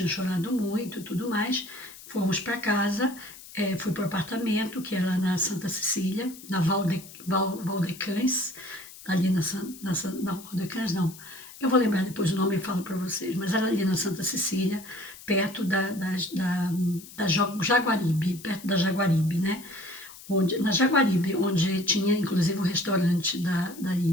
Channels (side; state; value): left; noise; hiss, 17 dB below the sound